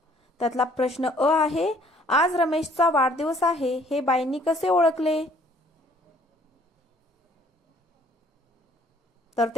त्यातला प्रश्न अ आहे, आज रमेशचा वाढदिवस आहे हे बाईंनी कसे ओळखले? तर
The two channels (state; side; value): normal; both; correlation 0.60